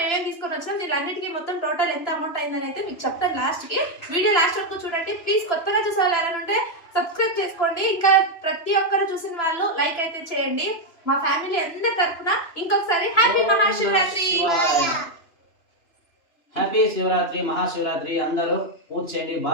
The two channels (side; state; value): right; late; 2.9 ms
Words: ఏమేమి తీసుకొని వచ్చినాం, దీనిలన్నిటికీ మొత్తం టోటల్ ఎంత అమౌంట్ అయిందని అయితే మీకు చెప్తాను లాస్ట్కి. వీడియో లాస్ట్ వరకు చూడండి ప్లీజ్. కొత్తగా చూసే వాళ్ళు ఎవరైనా ఉంటే సబ్స్క్రైబ్ చేసుకోండి. ఇంకా ప్రతి ఒక్కరు చూసిన వాళ్ళు లైక్ అయితే చేయండి. మా ఫ్యామిలీ అందరి తరఫున ఇంకొకసారి హ్యాపీ మహాశివరాత్రి. హ్యాపీ శివరాత్రి, మహాశివరాత్రి. అందరూ పూజ చేయండి,